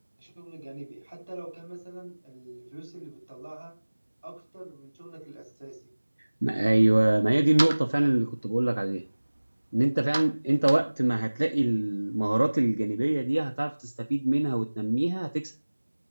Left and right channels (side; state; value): both; inverted; correlation -1.00